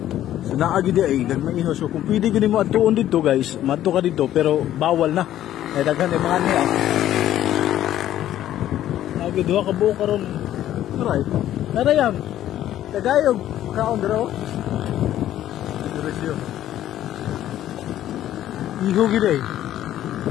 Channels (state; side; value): quieter; right; 12.4 dB